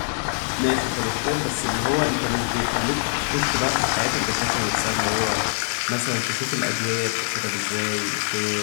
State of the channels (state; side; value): silent; right; 60 dB below the other